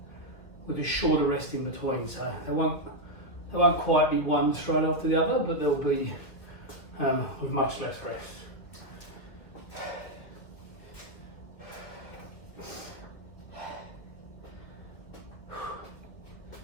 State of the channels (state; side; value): late; right; 2.2 ms